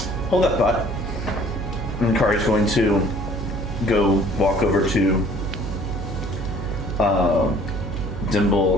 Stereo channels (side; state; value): right; noise; hum, 6 dB below the sound